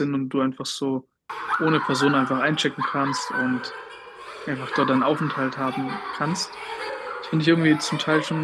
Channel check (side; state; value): both; identical; correlation 1.00